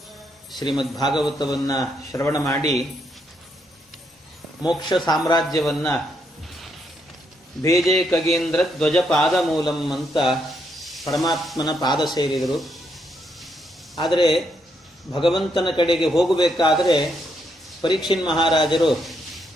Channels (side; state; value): both; normal; correlation 0.76